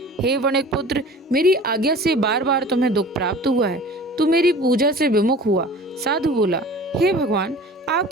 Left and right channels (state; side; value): normal; both; correlation 0.42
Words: हे वणिक पुत्र, मेरी आज्ञा से बार बार तुम्हें दुख प्राप्त हुआ है, तू मेरी पूजा से विमुख हुआ। साधु बोला, हे भगवान,